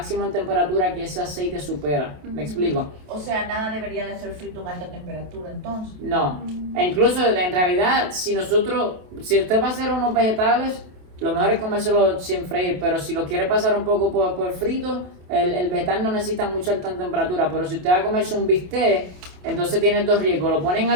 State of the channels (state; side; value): late; left; 27 ms